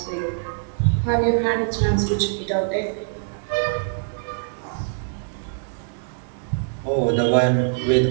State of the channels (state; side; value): silent; left; digital silence